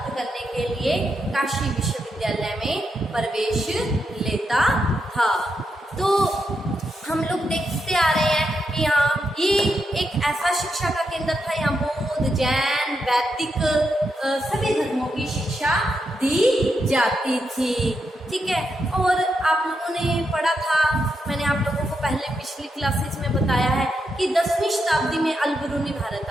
करने के लिए काशी विश्वविद्यालय में प्रवेश लेता था। तो हम लोग देखते आ रहे हैं कि यहाँ ये एक ऐसा शिक्षा का केंद्र था, यहाँ बौद्ध, जैन, वैदिक सभी धर्मों की शिक्षा दी जाती थी। ठीक है, और आप लोगों ने पढ़ा था, मैंने आप लोगों को पहले पिछली क्लासेस में बताया है कि 10वीं शताब्दी में अल-बिरूनी भारत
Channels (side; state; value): both; normal; correlation 0.83